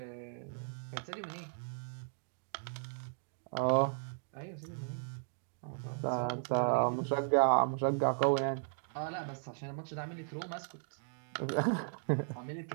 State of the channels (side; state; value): left; silent; digital silence